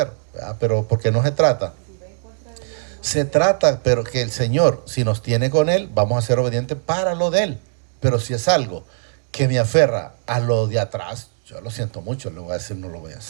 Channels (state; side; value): silent; left; digital silence